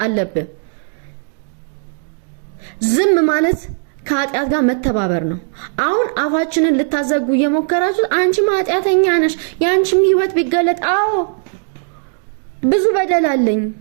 አለብህ። ዝም ማለት ከኃጢአት ጋር መተባበር ነው። አሁን አፋችንን ልታዘጉ እየሞከራችሁ አንቺ ኃጢአተኛ ነሽ ያንቺም ህይወት ቢገለጥ አዎ ብዙ በደል አለኝ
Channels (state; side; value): silent; left; 62 dB below the other